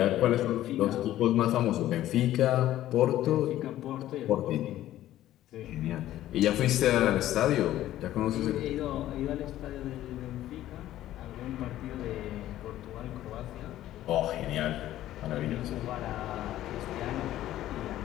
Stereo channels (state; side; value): quieter; right; 13.6 dB